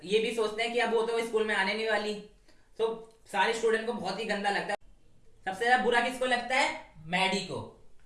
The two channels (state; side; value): identical; both; correlation 1.00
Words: ये भी सोचते हैं कि अब वो तो स्कूल में आने नहीं वाली. तो सारे स्टूडेंट को बहुत ही गंदा लगता है. सबसे ज्यादा बुरा किसको लगता है? मैडी को.